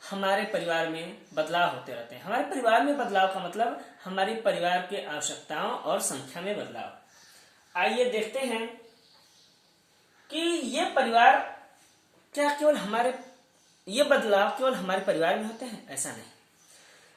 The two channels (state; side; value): identical; both; correlation 1.00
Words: हमारे परिवार में बदलाव होते रहते हैं। हमारे परिवार में बदलाव का मतलब हमारी परिवार के आवश्यकताओं और संख्या में बदलाव। आइए देखते हैं कि ये परिवार ये बदलाव केवल हमारे परिवार में होते हैं, ऐसा नहीं।